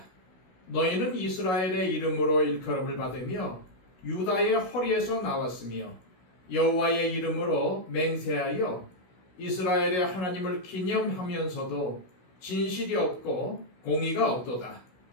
너희는 이스라엘의 이름으로 일컬음을 받으며 유다의 허리에서 나왔으며 여호와의 이름으로 맹세하여 이스라엘의 하나님을 기념하면서도 진실이 없고 공의가 없도다.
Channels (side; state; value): right; late; 16 ms